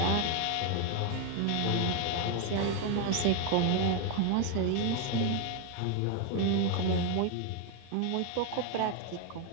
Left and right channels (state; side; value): different; both; correlation 0.01